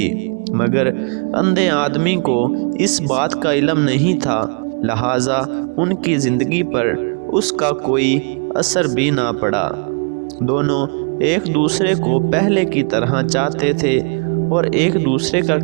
مگر اندھے آدمی کو اس بات کا علم نہیں تھا، لہٰذا ان کی زندگی پر اس کا کوئی اثر بھی نہ پڑا۔ دونوں ایک دوسرے کو پہلے کی طرح چاہتے تھے اور ایک دوسرے کا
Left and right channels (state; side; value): quieter; left; 38.6 dB